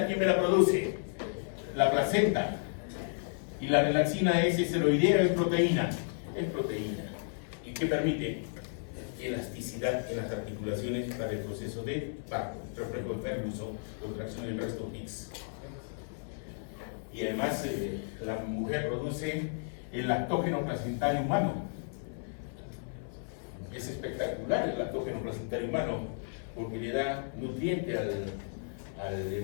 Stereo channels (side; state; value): right; silent; 56 dB below the other